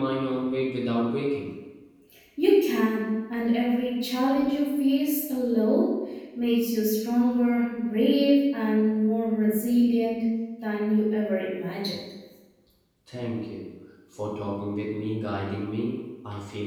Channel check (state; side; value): identical; both; correlation 1.00